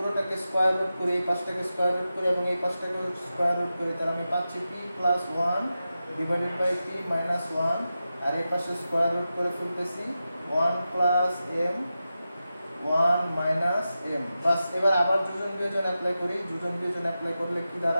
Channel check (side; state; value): both; inverted; correlation -0.92